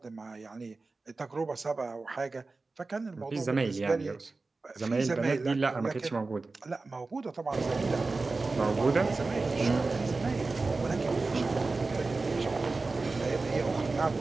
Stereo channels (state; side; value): quieter; left; 3.7 dB